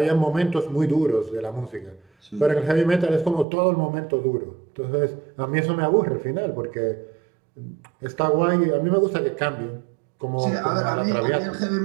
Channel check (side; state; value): left; drops out; at 3.5 s